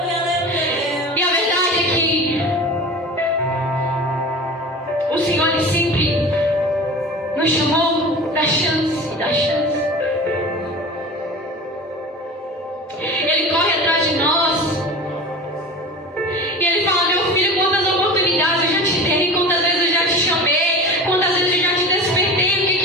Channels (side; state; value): both; normal; correlation 0.34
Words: E a verdade é que o Senhor ele sempre nos chamou da chance, da chance. Ele corre atrás de nós. E ele fala: meu filho, quantas oportunidades eu já te dei, quantas vezes eu já te chamei, quantas vezes eu já te despertei, o